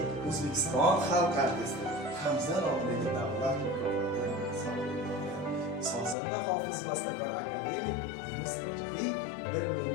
O'zbekiston xalq artisti. Hamza nomidagi davlat mukofotini sohibi. Sozanda hofiz bastakor akademik Yunus Rajabiy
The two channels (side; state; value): right; drops out; at 6.2 s